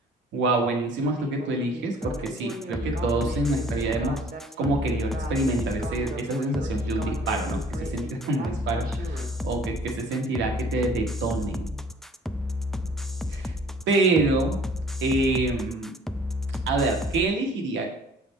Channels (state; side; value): normal; both; correlation 0.54